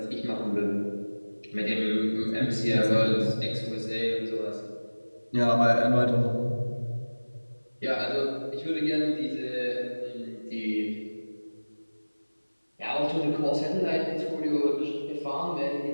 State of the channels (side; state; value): both; inverted; correlation -1.00